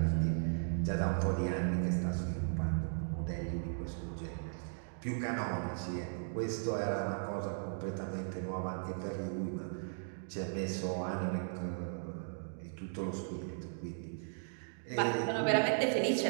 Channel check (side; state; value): left; silent; digital silence